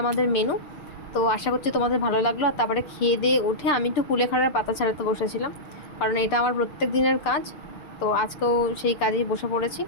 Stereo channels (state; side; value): late; right; 6.7 ms